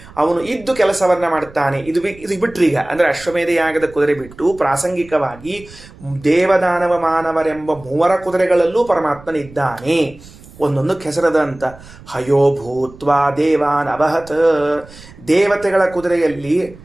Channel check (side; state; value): right; noise; rumble, 20 dB below the sound